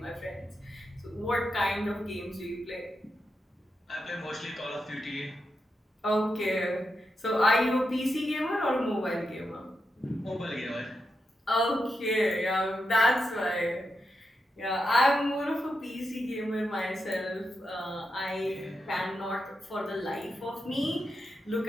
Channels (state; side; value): normal; both; correlation 0.86